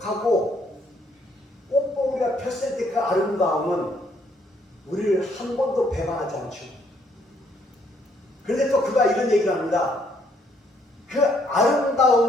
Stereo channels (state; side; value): normal; both; correlation 0.68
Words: 꽃봉오리가 폈을 때 그 아름다움은 우리를 한 번도 배반하지 않죠. 그런데 또 그가 이런 얘기를 합니다. 그